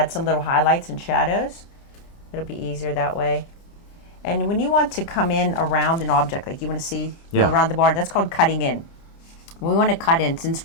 some little highlights and shadows. It'll be easier that way. And when you want to come in around an object, like you want to see Yeah. around the barn, that's called cutting in. We want to cut in,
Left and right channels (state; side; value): late; right; 30 ms